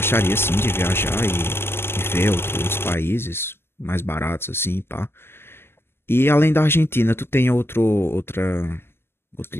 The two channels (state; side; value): late; right; 0.12 ms